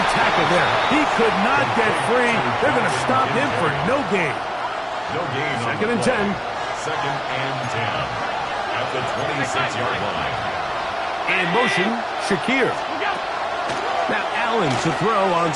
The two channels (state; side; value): identical; both; correlation 1.00